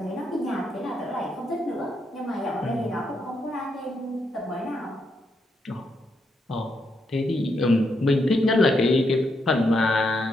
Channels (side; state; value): both; normal; correlation 0.80